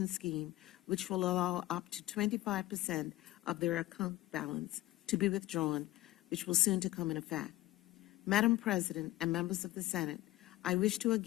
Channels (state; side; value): quieter; right; 16.6 dB